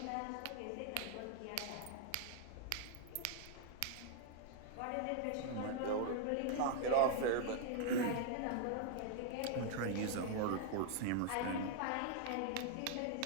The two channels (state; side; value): different; both; correlation -0.01